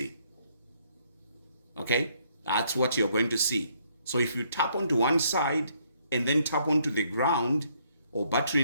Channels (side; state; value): both; inverted; correlation -0.69